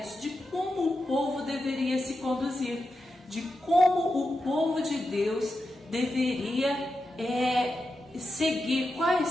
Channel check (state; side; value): normal; both; correlation 0.89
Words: de como o povo deveria se conduzir, de como o povo de Deus deveria seguir,